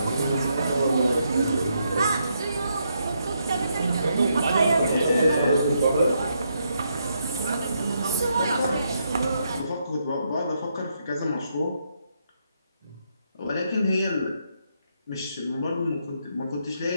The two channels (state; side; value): inverted; both; correlation -0.78